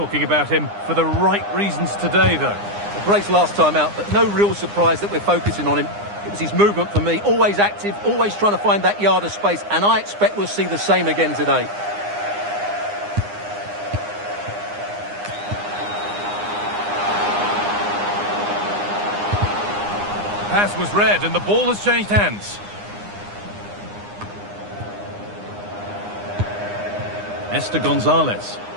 about him for the right reasons today, though? Brace last time out, but no real surprise that we're focusing on him. It was his movement for me. Always active, always trying to find that yard of space, and I expect we'll see the same again today. Pass was read, and the ball has changed hands. Esther Gonzalez.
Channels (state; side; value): late; left; 9.8 ms